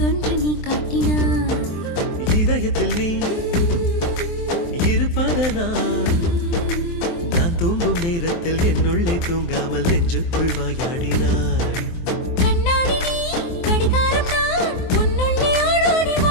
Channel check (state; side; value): late; right; 23 ms